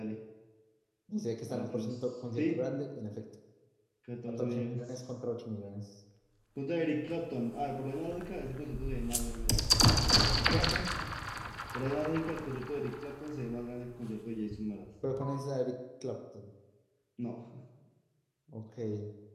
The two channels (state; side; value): identical; both; correlation 1.00